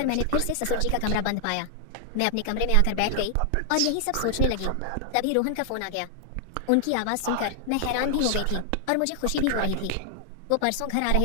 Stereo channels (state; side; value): different; both; correlation 0.00